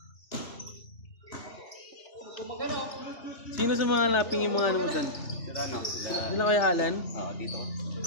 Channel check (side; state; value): right; late; 3.4 ms